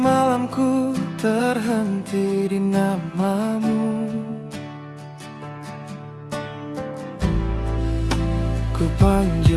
terhenti di namamu. Ku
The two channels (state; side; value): identical; both; correlation 1.00